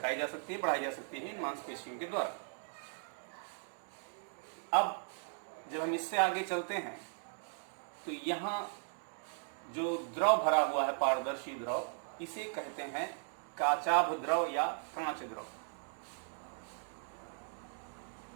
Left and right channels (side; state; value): left; silent; 53 dB below the other